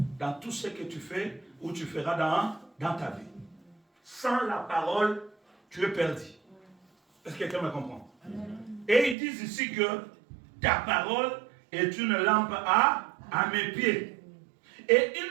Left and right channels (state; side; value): drops out; left; at 9.2 s